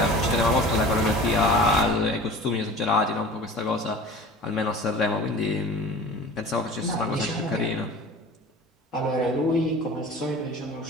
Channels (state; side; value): normal; both; correlation 0.40